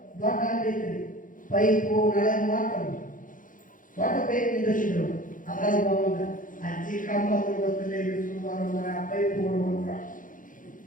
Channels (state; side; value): late; right; 0.39 ms